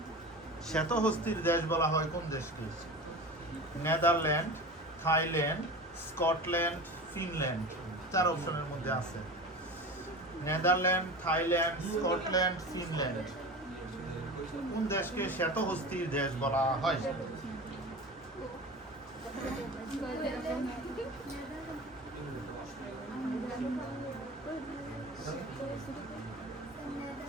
শ্বেতহস্তির দেশ বলা হয় কোন দেশকে? Netherland, Thailand, Scotland, Finland. 4 অপশনের মধ্যে আছে। Netherland, Thailand, Scotland, Finland. কোন দেশকে শ্বেতহস্তির দেশ বলা হয়?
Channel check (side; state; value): both; normal; correlation 0.32